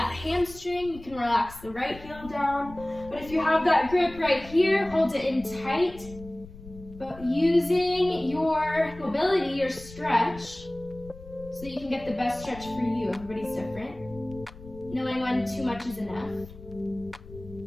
hamstring. You can relax the right heel down. But if you have that grip right here, hold it in tight. But using your mobility, your stretch, so that you can get the best stretch for you. Everybody's different. Knowing when too much is enough.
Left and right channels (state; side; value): noise; left; rumble, 17 dB below the sound